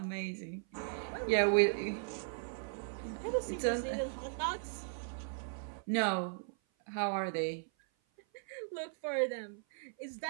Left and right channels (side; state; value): left; silent; 53 dB below the other